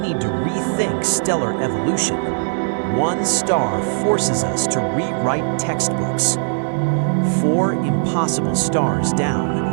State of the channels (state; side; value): silent; left; digital silence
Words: to rethink stellar evolution. One star forces us to rewrite textbooks. 4 impossible stars